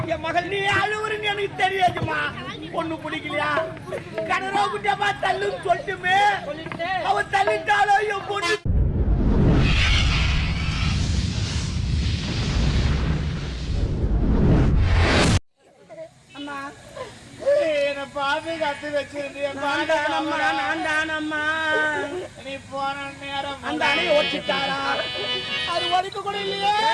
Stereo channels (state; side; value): identical; both; correlation 1.00